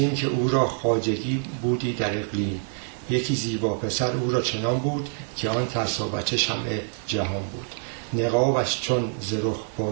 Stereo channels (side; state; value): left; silent; 61 dB below the other